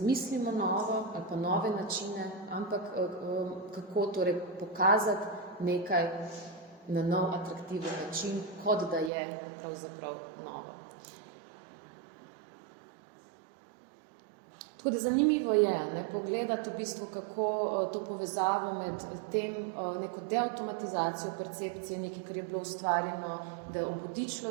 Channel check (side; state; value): left; drops out; at 9.1 s